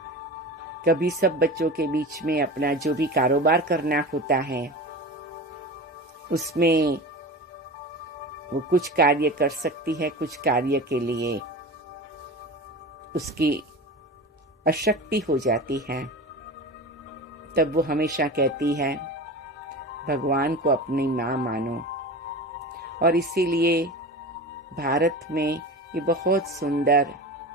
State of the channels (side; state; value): both; normal; correlation 0.31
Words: कभी सब बच्चों के बीच में अपना जो भी कारोबार करना होता है उसमें वो कुछ कार्य कर सकती है, कुछ कार्य के लिए उसकी अशक्ति हो जाती है। तब वो हमेशा कहती है भगवान को अपनी माँ मानो। और इसीलिए भारत में ये बहुत सुंदर